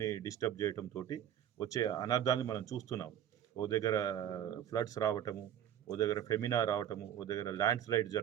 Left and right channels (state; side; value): quieter; left; 10.3 dB